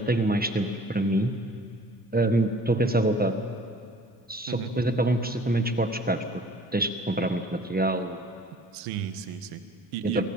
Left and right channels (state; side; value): normal; both; correlation 0.51